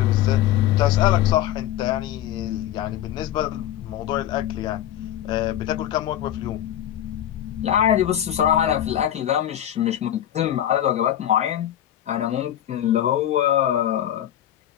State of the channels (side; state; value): right; quieter; 11.7 dB